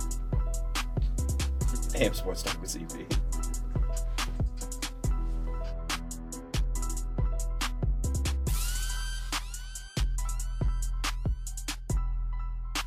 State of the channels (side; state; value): both; identical; correlation 1.00